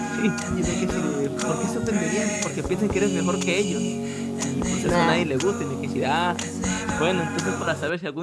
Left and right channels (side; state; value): both; identical; correlation 1.00